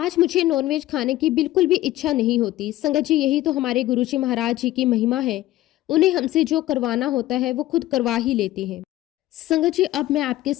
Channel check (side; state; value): right; quieter; 15.5 dB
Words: मुझे नॉनवेज खाने की बिल्कुल भी इच्छा नहीं होती। संगत जी यही तो हमारे गुरुजी महाराज जी की महिमा है। उन्हें हमसे जो करवाना होता है वो खुद करवा ही लेते हैं। संगत जी, अब मैं आपके